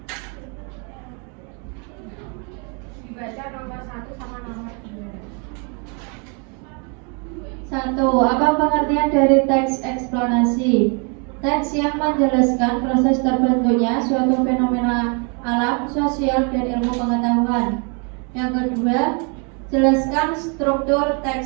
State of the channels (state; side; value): quieter; left; 36.0 dB